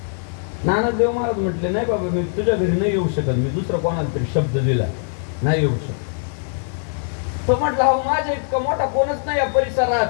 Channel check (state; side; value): silent; right; digital silence